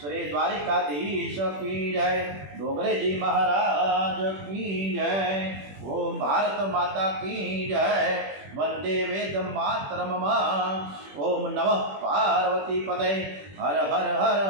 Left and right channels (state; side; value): late; left; 21 ms